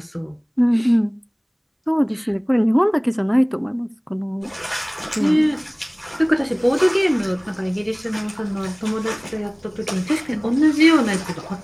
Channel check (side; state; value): both; identical; correlation 1.00